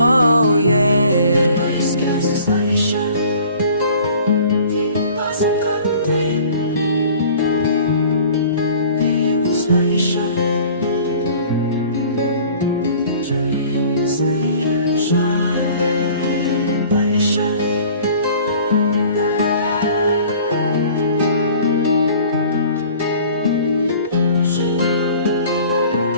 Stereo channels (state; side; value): inverted; both; correlation -0.49